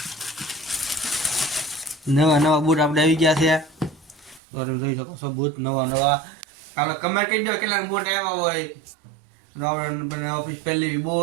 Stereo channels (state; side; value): drops out; left; at 4.4 s